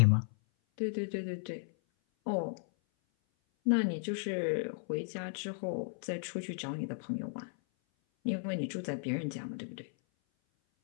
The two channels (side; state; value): right; silent; 54 dB below the other